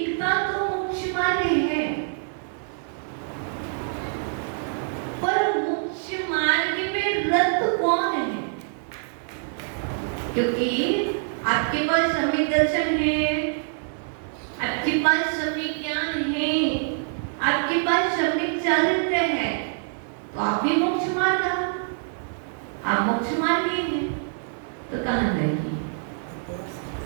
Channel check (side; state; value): left; silent; 61 dB below the other